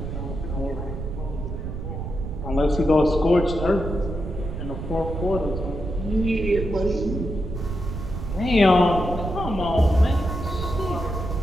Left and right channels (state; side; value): noise; right; rumble, 6 dB below the sound